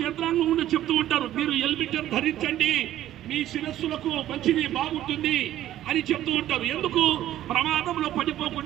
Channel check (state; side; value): quieter; left; 12.9 dB